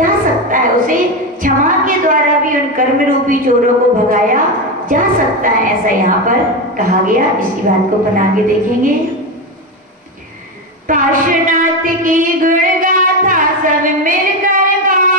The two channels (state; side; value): normal; both; correlation 0.14